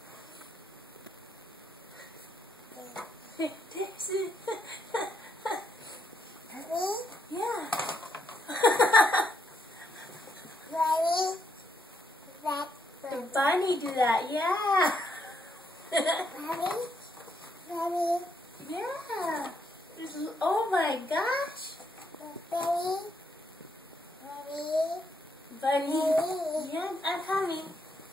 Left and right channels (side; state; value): both; normal; correlation 0.76